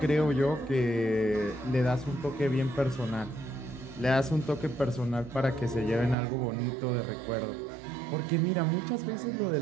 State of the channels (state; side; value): drops out; left; at 6.2 s